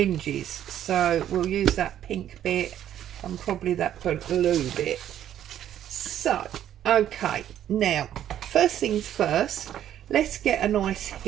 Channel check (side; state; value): left; quieter; 11.0 dB